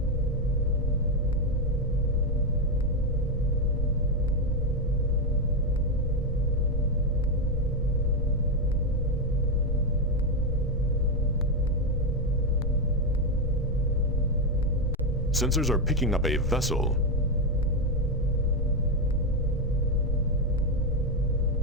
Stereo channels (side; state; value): both; normal; correlation 0.04